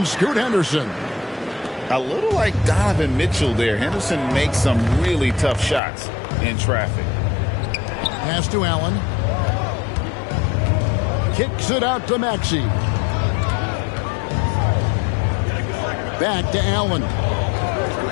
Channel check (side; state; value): right; drops out; at 5.8 s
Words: Scoot Henderson. A little like Donovan Mitchell there. Henderson makes some really tough shots in traffic. Pass to Allen. Kicks it out to Maxey. Back to Allen.